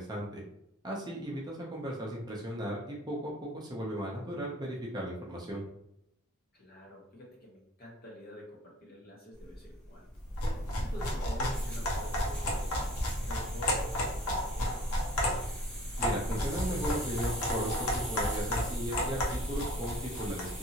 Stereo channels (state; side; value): normal; both; correlation 0.50